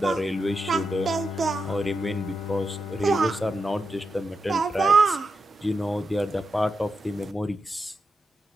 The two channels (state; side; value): normal; both; correlation 0.87